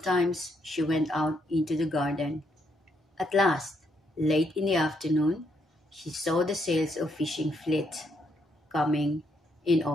she went out into the garden. At last, late in the afternoon, she saw the sails of fishing fleet coming in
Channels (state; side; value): normal; both; correlation 0.75